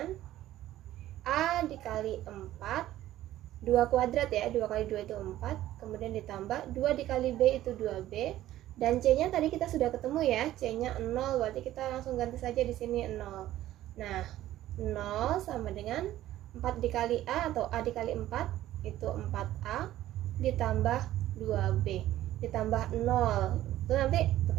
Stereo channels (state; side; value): quieter; left; 14.0 dB